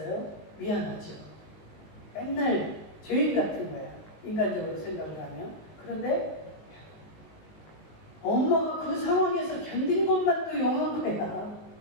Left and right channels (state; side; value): late; right; 19 ms